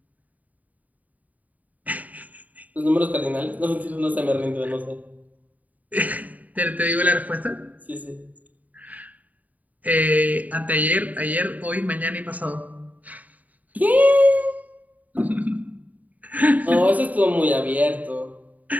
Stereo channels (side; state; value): left; late; 0.075 ms